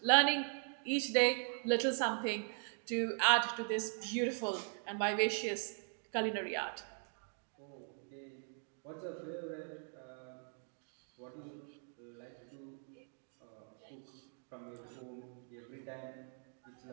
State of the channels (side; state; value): left; silent; 51 dB below the other